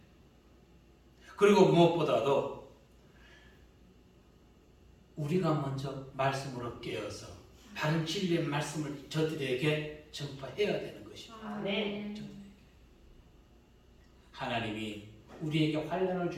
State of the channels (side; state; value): both; identical; correlation 1.00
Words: 그리고 무엇보다도 우리가 먼저 말씀으로 깨어서 바른 진리의 말씀을 저들에게 전파해야 되는 것입니다. 아멘. 하나님이 우리에게 환난을